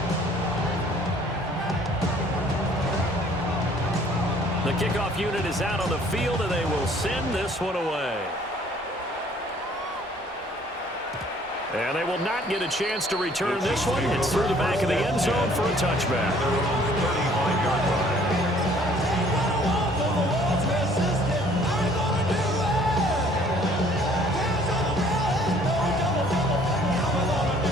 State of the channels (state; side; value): normal; both; correlation 0.58